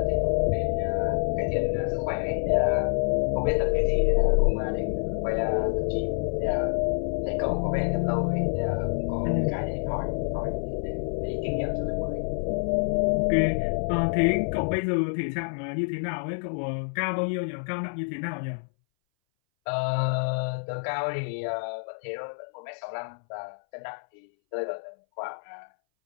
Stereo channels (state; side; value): silent; right; 60 dB below the other